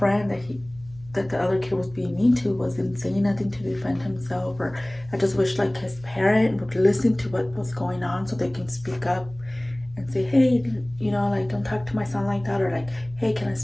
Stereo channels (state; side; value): noise; right; hum, 20 dB below the sound